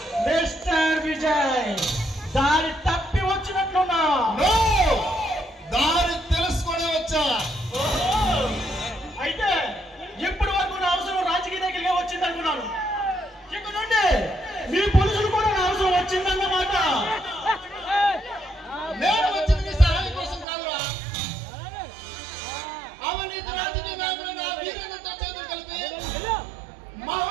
మిస్టర్ విజయ్, దారి తప్పి వచ్చినట్లున్నా? దారి తెలుసుకొని వచ్చా. అయితే ఇప్పటి వరకు నా అవసరం రాజకీయ దగ్గరగా వచ్చింది అనుకున్నాను. ఇక నుండి మీ పోలీసులు కూడా నా అవసరం వచ్చిందన్నమాట. నేను వచ్చింది సహాయం కోసం కాదురా, అవినీతి రాజకీయ నాయకులు నా వీరులతో చేతులు కలిపి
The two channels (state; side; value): drops out; left; at 20.5 s